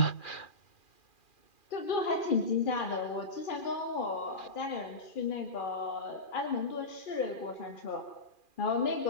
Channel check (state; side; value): late; right; 2.4 ms